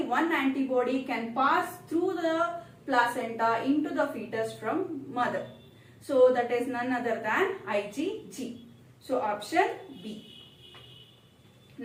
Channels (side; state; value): both; identical; correlation 1.00